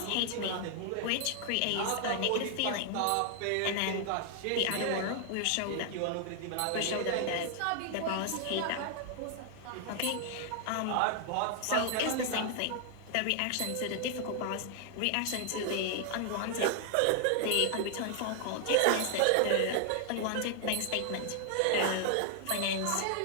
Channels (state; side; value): different; both; correlation 0.00